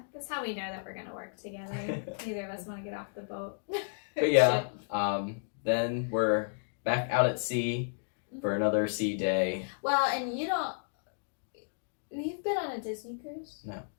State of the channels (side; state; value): right; silent; digital silence